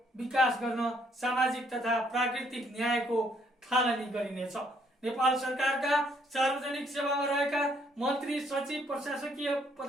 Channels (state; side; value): normal; both; correlation 0.68